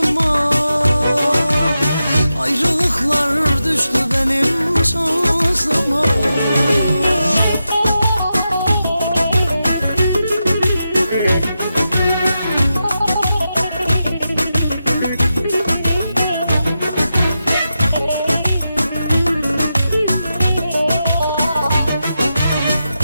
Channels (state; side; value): inverted; both; correlation -0.89